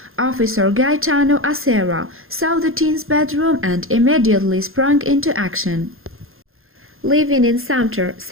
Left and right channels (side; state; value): left; late; 0.61 ms